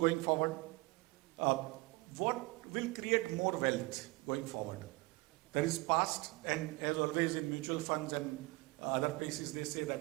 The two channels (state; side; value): quieter; left; 23.9 dB